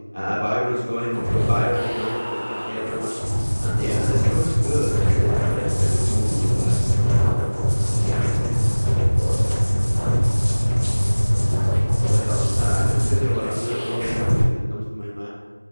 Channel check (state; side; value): inverted; both; correlation -1.00